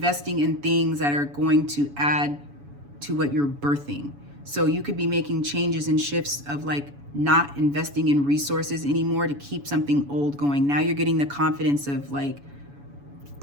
in things that are going to add to what you're birthing. So you could be making changes and shifts of like not investing in resources anymore to keep something old going. Now you're getting the confidence of like,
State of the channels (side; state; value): left; late; 7.0 ms